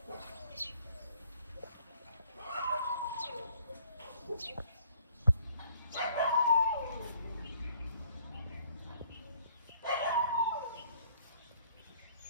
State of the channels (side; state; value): both; inverted; correlation -0.60